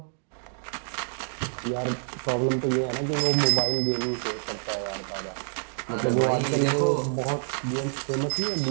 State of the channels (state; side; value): silent; left; digital silence